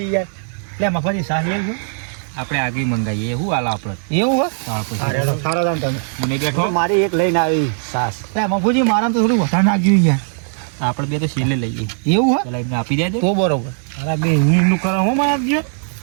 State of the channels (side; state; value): left; silent; 67 dB below the other